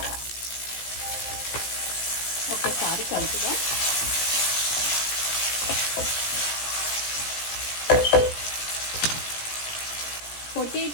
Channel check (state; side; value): late; right; 17 ms